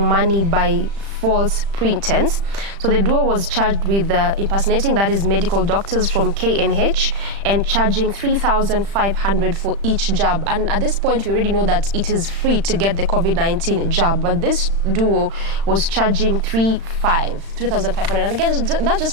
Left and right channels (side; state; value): left; late; 35 ms